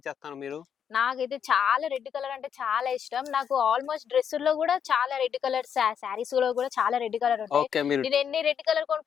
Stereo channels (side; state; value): right; quieter; 7.9 dB